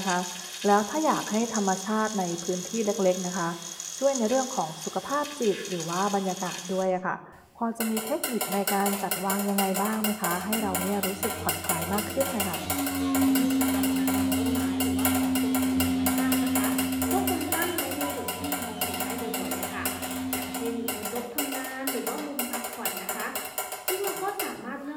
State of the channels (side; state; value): both; identical; correlation 1.00